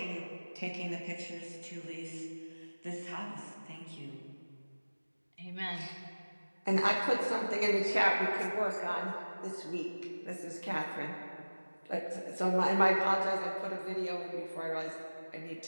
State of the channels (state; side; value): inverted; both; correlation -1.00